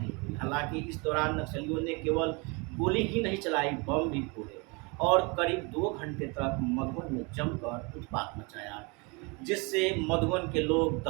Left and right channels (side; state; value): left; quieter; 29.6 dB